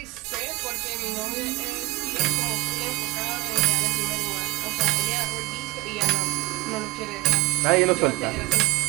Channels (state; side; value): quieter; left; 21.4 dB